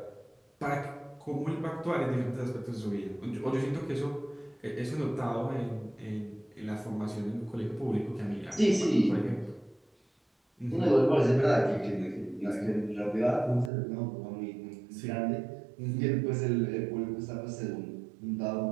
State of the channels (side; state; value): left; drops out; at 13.7 s